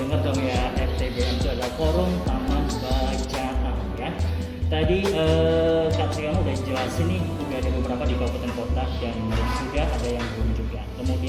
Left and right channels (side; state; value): both; identical; correlation 1.00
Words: dong ya, FTBM itu adalah Forum Taman Bacaan ya. Tadi Kak Triyono udah jelasin nih, udah ada beberapa di kabupaten kota dan sudah ada yang belum juga.